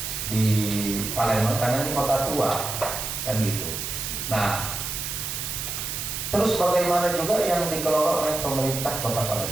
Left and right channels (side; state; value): right; noise; hiss, 4 dB below the sound